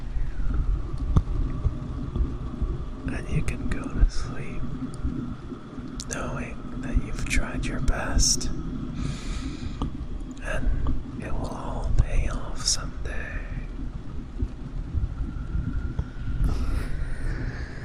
And you can go to sleep knowing that you've tried your best, and it will all pay off someday.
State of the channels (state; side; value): identical; both; correlation 1.00